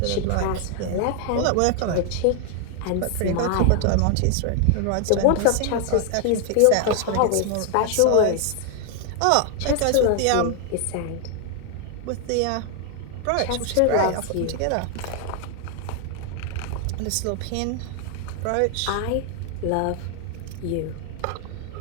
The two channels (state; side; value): different; both; correlation 0.00